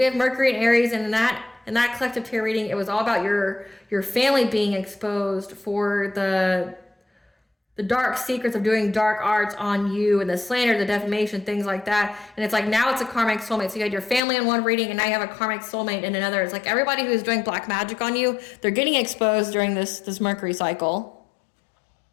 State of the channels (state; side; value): drops out; right; at 14.2 s